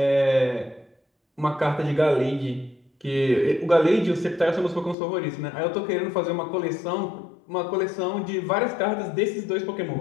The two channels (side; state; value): right; drops out; at 5.0 s